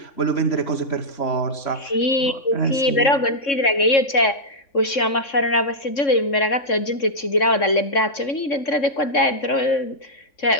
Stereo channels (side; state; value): right; late; 3.7 ms